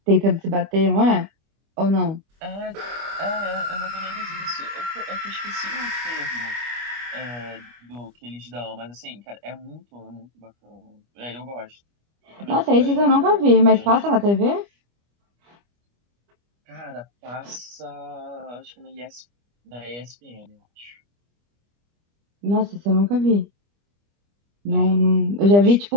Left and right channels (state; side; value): late; left; 25 ms